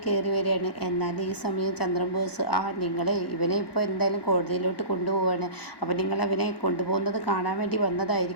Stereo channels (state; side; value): late; right; 1.1 ms